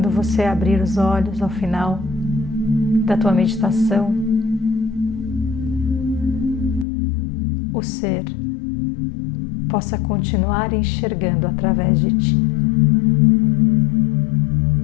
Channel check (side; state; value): right; drops out; at 6.9 s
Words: você abrir os olhos ao final da tua meditação, o ser possa continuar enxergando através de ti.